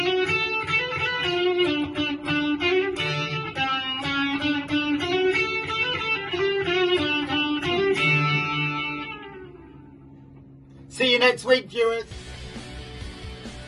See you next week, viewers.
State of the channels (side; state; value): both; identical; correlation 1.00